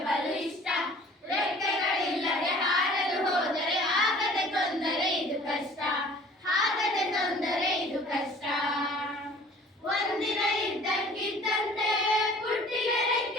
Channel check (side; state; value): both; normal; correlation 0.50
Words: ಬಲು ಇಷ್ಟ. ರೆಕ್ಕೆಗಳಿಲ್ಲದೆ ಹಾರಲು ಹೋದರೆ ಆಗದ ತೊಂದರೆ ಇದು ಕಷ್ಟ. ಆಗದ ತೊಂದರೆ ಇದು ಕಷ್ಟ. ಒಂದಿನ ಇದ್ದಕ್ಕಿದ್ದಂತೆ ಪುಟ್ಟಿಗೆ